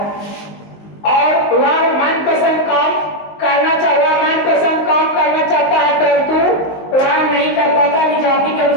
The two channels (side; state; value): right; late; 19 ms